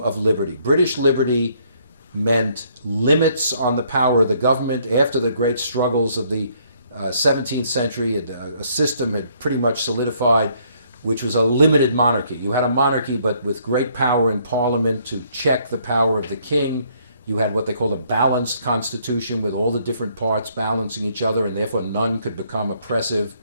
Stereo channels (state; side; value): inverted; both; correlation -0.67